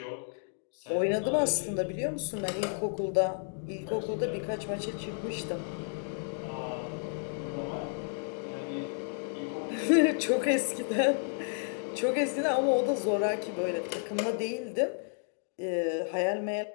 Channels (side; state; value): right; silent; 57 dB below the other